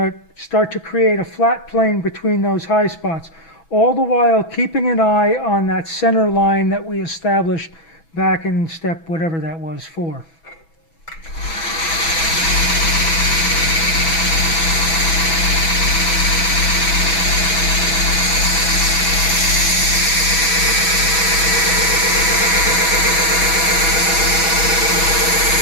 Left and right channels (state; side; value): late; right; 6.1 ms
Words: start to create a flat plane between those high spots, all the while keeping an eye on that center line that we established back in step whatever that was 4.